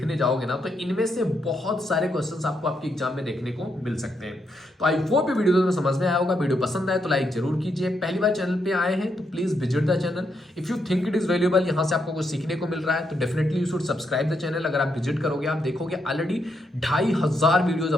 जाओगे ना, तो इनमें से बहुत सारे क्वेश्चंस आपको आपके एग्जाम में देखने को मिल सकते हैं। तो आई होप ये वीडियो में समझ में आया होगा। वीडियो पसंद आए तो लाइक जरूर कीजिए। पहली बार चैनल पे आए हैं तो please visit the channel. If you think it is valuable, यहाँ से आपको कुछ सीखने को मिल रहा है तो definitely you should subscribe the channel. अगर आप विजिट करोगे आप देखोगे ऑलरेडी 2500 वीडियोज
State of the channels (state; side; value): normal; both; correlation 0.79